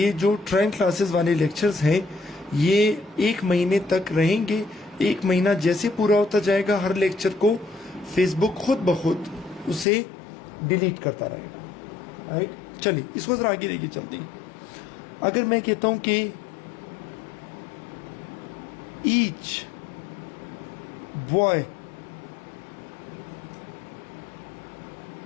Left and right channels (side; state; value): right; drops out; at 9.9 s